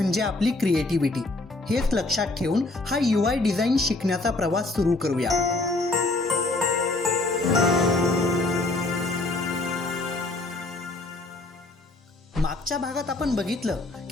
आपली क्रिएटिव्हिटी. हेच लक्षात ठेवून हा UI डिझाईन शिकण्याचा प्रवास सुरू करूया. मागच्या भागात आपण बघितलं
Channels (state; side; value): quieter; right; 3.1 dB